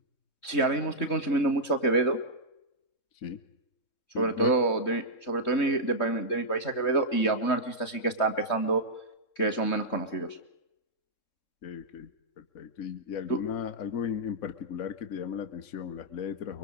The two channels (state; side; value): late; right; 3.2 ms